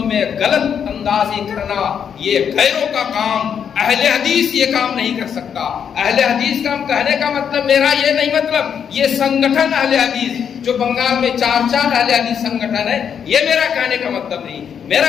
میں غلط اندازی کرنا یہ غیروں کا کام، اہل حدیث یہ کام نہیں کر سکتا۔ اہل حدیث کا کہنے کا مطلب میرا یہ نہیں، مطلب یہ سنگٹھن اہل حدیث جو بنگال میں 4 اہل حدیث سنگٹھن ہے، یہ میرا کہنے کا مطلب نہیں۔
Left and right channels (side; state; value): right; quieter; 7.8 dB